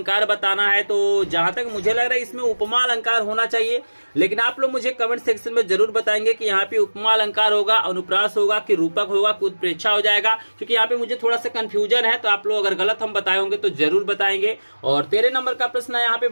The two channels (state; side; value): inverted; both; correlation -1.00